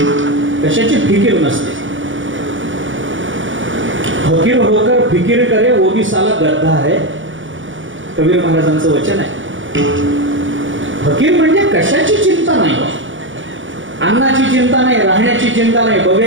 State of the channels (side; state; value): left; late; 0.56 ms